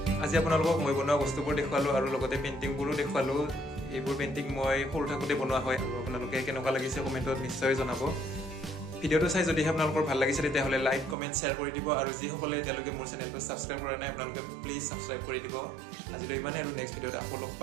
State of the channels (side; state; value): left; drops out; at 11.2 s